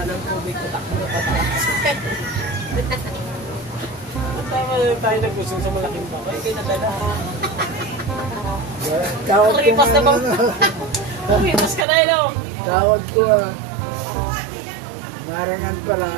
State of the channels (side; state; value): left; drops out; at 11.9 s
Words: ng tubig, patakbo na pataas. Tama na tayo nagusong sa malaking bakay. Kaya nadala. Tawag ko Kumipas na bang? Kumipas ka na yun. Tawag ko Marangan pala.